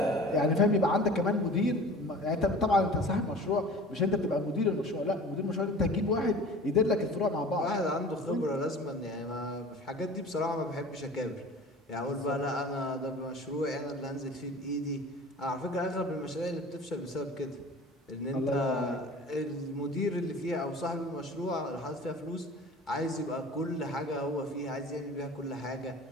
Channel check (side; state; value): both; normal; correlation 0.41